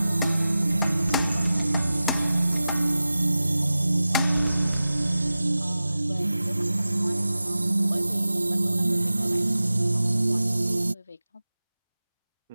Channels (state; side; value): inverted; both; correlation -0.95